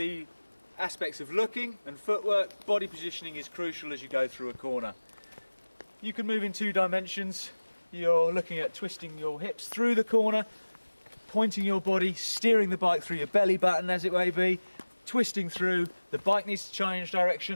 aspects of looking and footwork, body positioning is crucial as you go through a corner. You can move in two dimensions. You're looking at twisting your hips through the corner, pointing your body, steering the bike through your belly button as it may be, twisting through. The bike needs to change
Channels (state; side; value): inverted; both; correlation -1.00